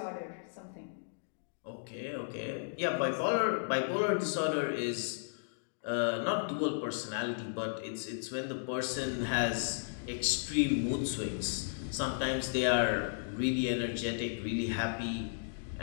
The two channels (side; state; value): right; silent; digital silence